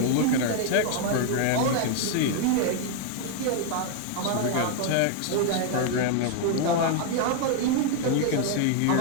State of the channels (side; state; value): both; different; correlation 0.00